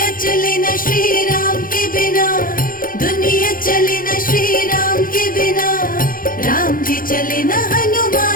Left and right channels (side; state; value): right; late; 0.41 ms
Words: चले न श्री राम के बिना, दुनिया चले न श्री राम के बिना, राम जी चले न